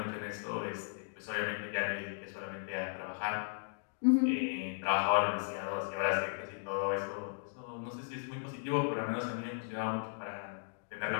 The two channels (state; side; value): silent; right; digital silence